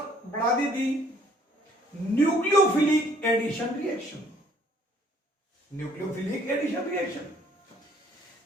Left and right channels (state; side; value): normal; both; correlation 0.60